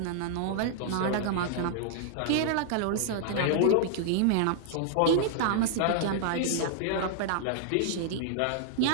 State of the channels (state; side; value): different; both; correlation -0.01